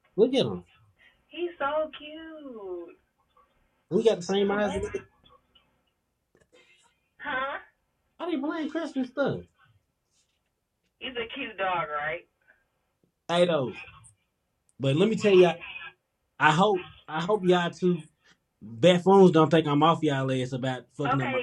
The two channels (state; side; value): identical; both; correlation 1.00